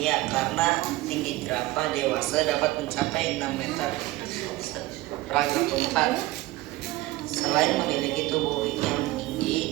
karena tinggi jerapah dewasa dapat mencapai 6 meter. Paragraf keempat, selain memiliki tubuh yang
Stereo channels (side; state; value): left; quieter; 18.3 dB